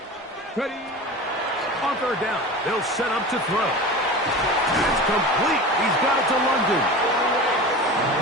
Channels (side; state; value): both; normal; correlation 0.32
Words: Ready. On 3rd down, they'll set up to throw. That's complete. He's got it to London.